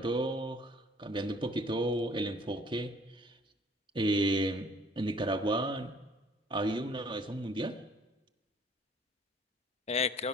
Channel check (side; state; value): both; normal; correlation 0.56